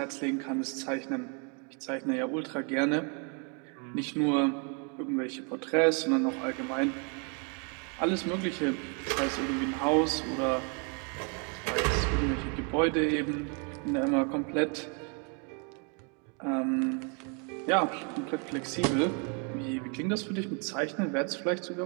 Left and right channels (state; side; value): quieter; left; 36.6 dB